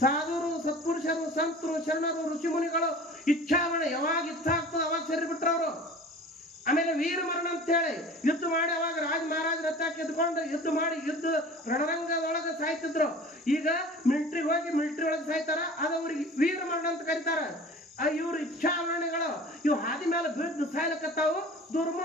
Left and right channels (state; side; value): normal; both; correlation 0.42